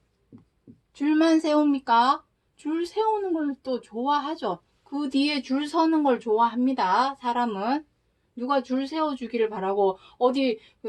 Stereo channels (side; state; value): both; identical; correlation 1.00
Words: 줄만 세웁니까? 줄 세우는 걸 또 좋아하죠. 그 뒤에 줄 서는 걸 좋아합니다. 사람은. 누가 줄 세워주기를 바라고 어디